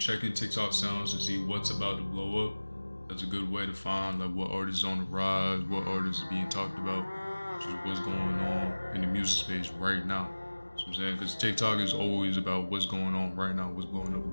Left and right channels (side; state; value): both; inverted; correlation -1.00